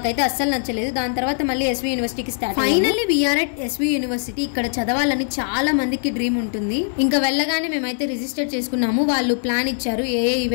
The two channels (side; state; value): right; silent; digital silence